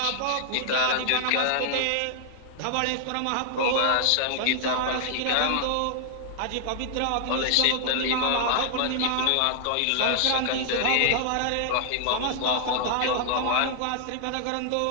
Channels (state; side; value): different; both; correlation -0.01